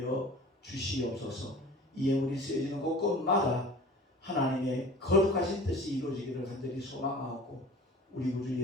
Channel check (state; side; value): normal; both; correlation 0.42